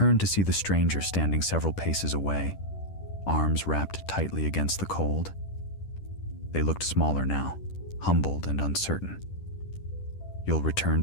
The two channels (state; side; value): late; right; 10 ms